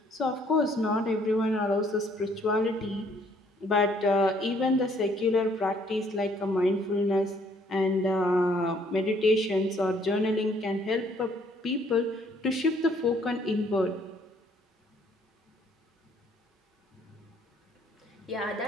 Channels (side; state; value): both; normal; correlation 0.64